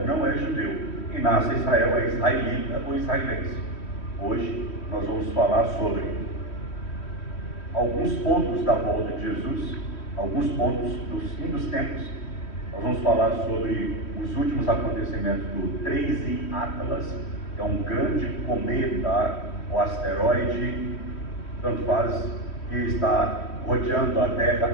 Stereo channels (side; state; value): right; late; 3.1 ms